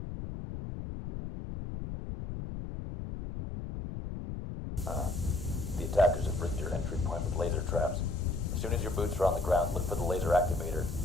The attackers have rigged your entry point with laser traps. As soon as your boots are on the ground, look for the laser activator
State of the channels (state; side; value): noise; left; rumble, 6 dB below the sound